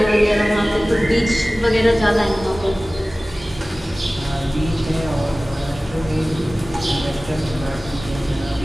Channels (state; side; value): normal; both; correlation 0.97